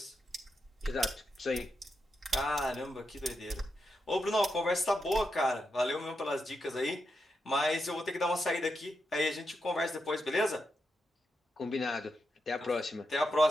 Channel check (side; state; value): both; normal; correlation 0.85